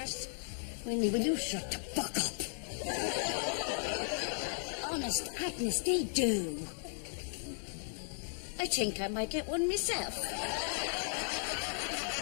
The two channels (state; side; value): silent; right; digital silence